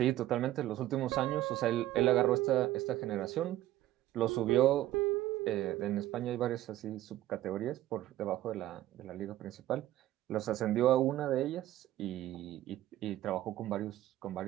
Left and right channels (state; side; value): quieter; left; 14.4 dB